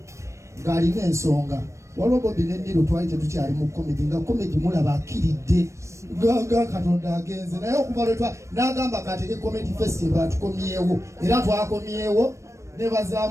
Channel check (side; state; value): left; late; 0.14 ms